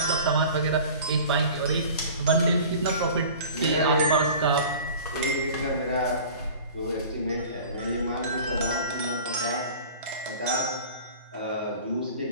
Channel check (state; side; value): inverted; both; correlation -0.42